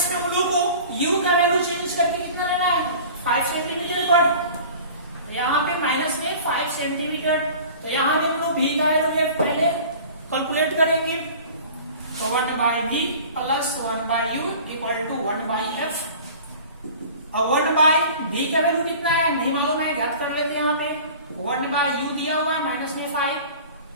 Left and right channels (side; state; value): both; inverted; correlation -0.42